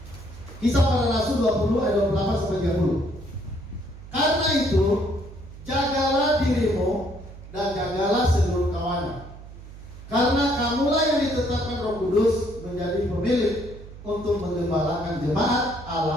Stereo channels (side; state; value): right; noise; hum, 16 dB below the sound